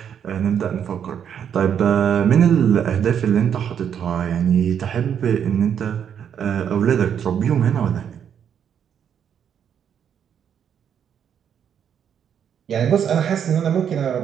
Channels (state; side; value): quieter; left; 8.4 dB